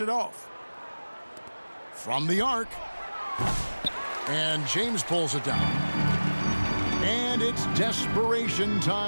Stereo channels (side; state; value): both; inverted; correlation -1.00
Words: it off. From the arc. And James pulls it down. And it's desperation